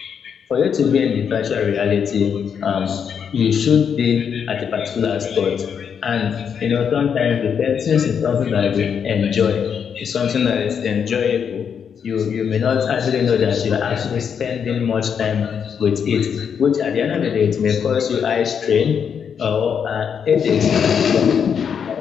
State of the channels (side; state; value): right; quieter; 7.3 dB